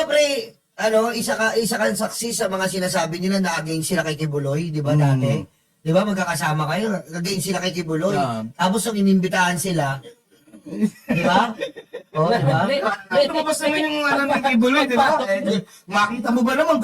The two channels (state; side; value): identical; both; correlation 1.00